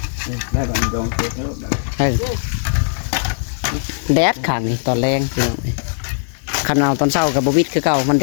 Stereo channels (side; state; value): right; silent; 66 dB below the other